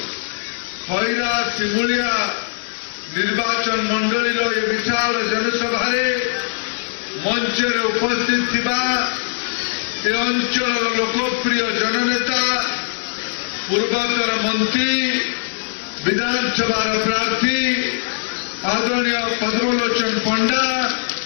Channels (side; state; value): right; silent; digital silence